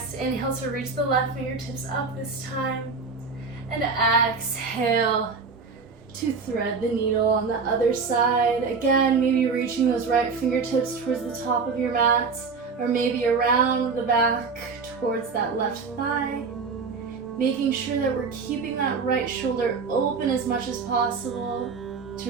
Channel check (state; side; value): quieter; left; 4.8 dB